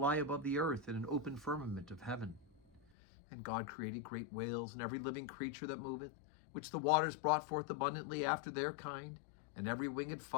above the earth in an open firmament of heaven. And God created great whales and every living creature that moveth, which the waters brought forth abundantly after their kind, and every winged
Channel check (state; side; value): drops out; right; at 2.8 s